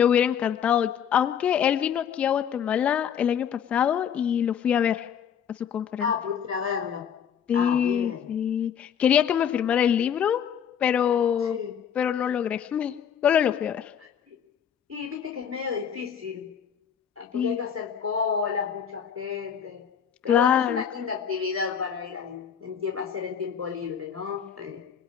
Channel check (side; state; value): right; quieter; 8.3 dB